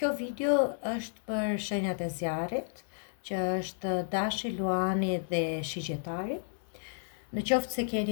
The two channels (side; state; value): right; silent; 56 dB below the other